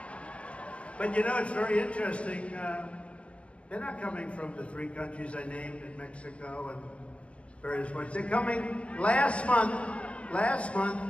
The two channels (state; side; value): late; right; 0.061 ms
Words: But you know, it's very interesting. They're not coming from the 3 countries I named in Mexico and various points. They're coming last month,